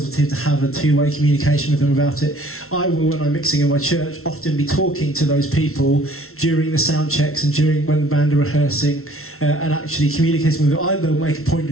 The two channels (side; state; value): right; late; 0.62 ms